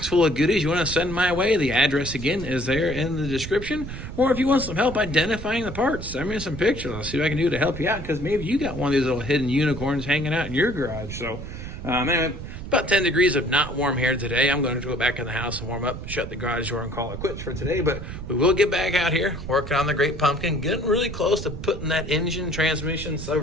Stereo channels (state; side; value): noise; right; rumble, 9 dB below the sound